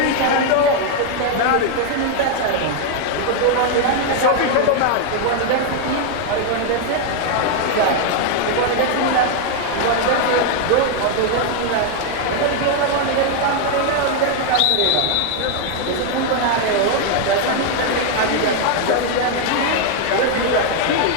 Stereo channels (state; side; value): different; both; correlation 0.00